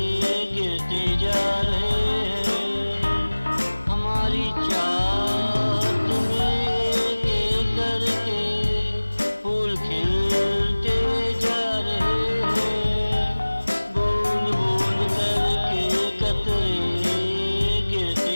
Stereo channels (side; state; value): both; inverted; correlation -1.00